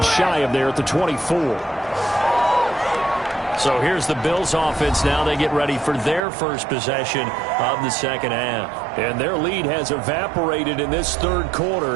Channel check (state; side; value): drops out; left; at 6.2 s